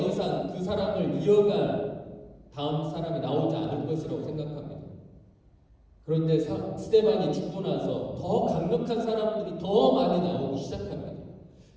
그 사람을 이어갈 다음 사람이 나오지 않을 것이라고 생각합니다. 그런데 스데반이 죽고 나서 더 강력한 사람들이 더 많이 나오기 시작합니다.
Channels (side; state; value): both; identical; correlation 1.00